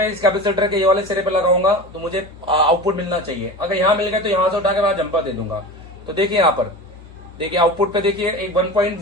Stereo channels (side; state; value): both; normal; correlation 0.31